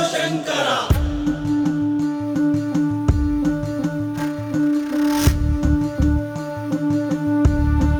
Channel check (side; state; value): both; identical; correlation 1.00